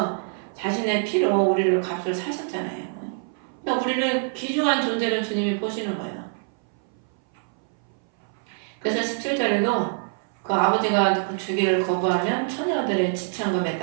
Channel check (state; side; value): silent; left; 59 dB below the other